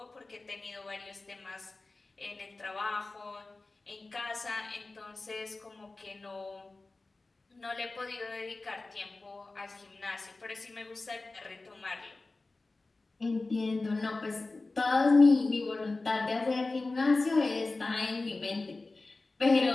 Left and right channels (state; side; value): quieter; right; 3.4 dB